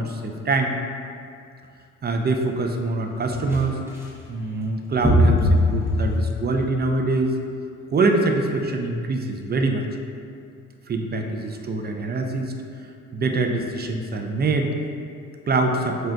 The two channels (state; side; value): normal; both; correlation 0.54